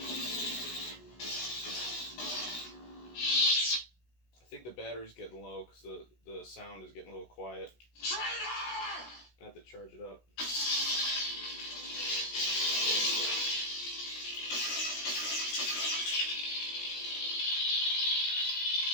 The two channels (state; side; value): late; right; 16 ms